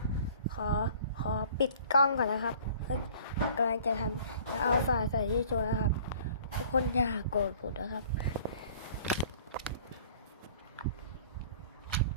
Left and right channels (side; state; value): both; inverted; correlation -0.50